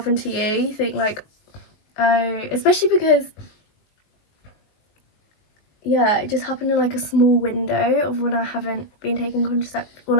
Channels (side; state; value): right; late; 19 ms